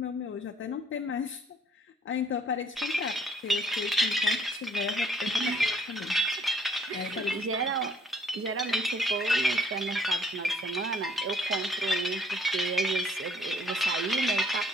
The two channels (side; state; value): both; normal; correlation 0.62